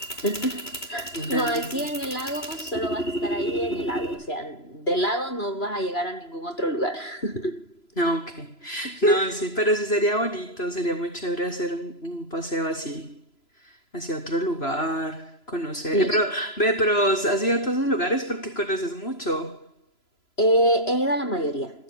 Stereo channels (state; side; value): late; right; 3.0 ms